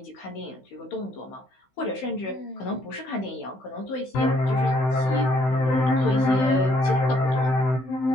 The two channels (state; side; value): late; right; 16 ms